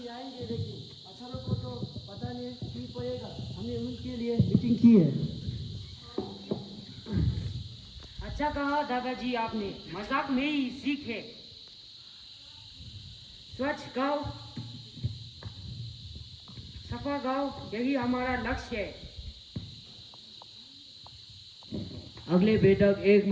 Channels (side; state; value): both; identical; correlation 1.00